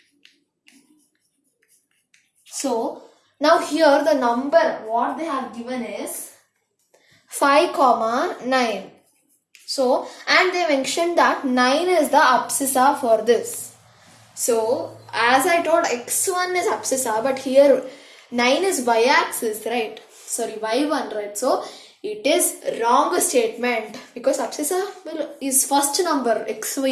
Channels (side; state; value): both; identical; correlation 1.00